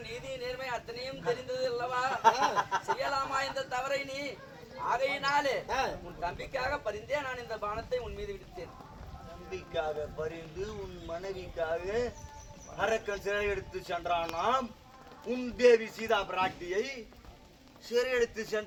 நீதி நேர்மை அத்தனையும் தெரிந்தது அல்லவா? செய்யலாமா இந்த தவறை நீ? ஆகையினாலே உன் தம்பிக்காக பரிந்தே நான் இந்த பானத்தை உன் மீது விடுத்தேன். தம்பிக்காக பரிந்து உன் மனைவிக்காக அரக்கன் சிறை எடுத்து சென்றானாம். உன் தேவி சீதா பிராட்டியை சிறை எடுத்து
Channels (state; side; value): identical; both; correlation 1.00